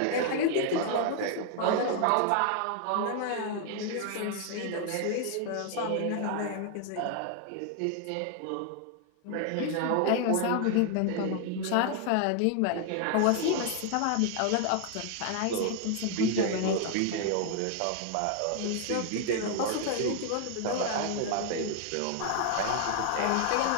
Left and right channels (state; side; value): different; both; correlation 0.00